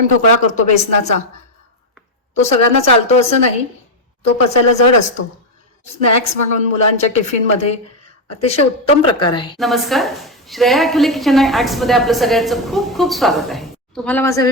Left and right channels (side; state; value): both; normal; correlation 0.05